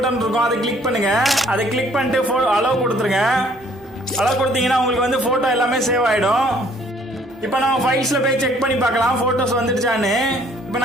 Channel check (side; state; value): both; normal; correlation 0.60